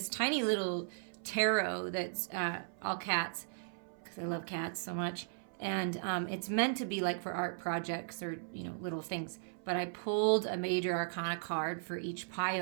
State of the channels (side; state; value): left; silent; 53 dB below the other